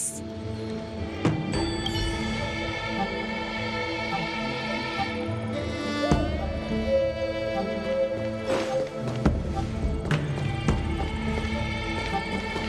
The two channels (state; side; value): identical; both; correlation 1.00